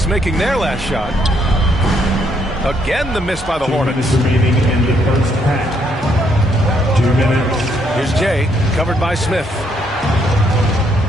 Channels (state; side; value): normal; both; correlation 0.72